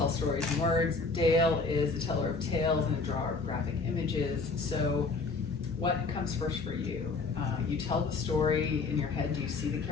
stories in words. Dale is a teller of tales and a drawer of graphic images. So, what comes first for you? You tell the story in your head. Do you see the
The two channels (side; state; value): right; quieter; 4.1 dB